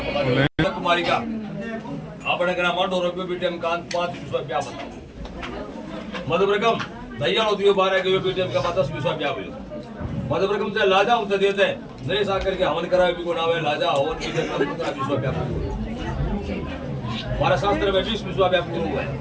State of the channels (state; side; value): identical; both; correlation 1.00